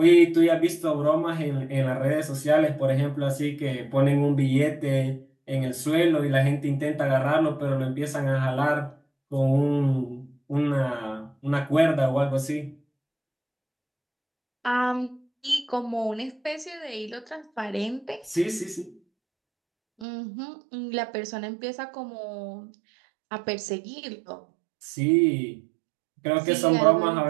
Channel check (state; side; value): drops out; left; at 20.1 s